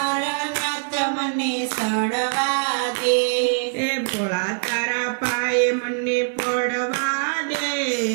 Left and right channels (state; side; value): silent; left; 58 dB below the other